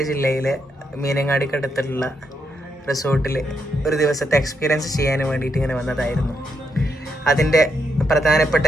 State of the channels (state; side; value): normal; both; correlation 0.80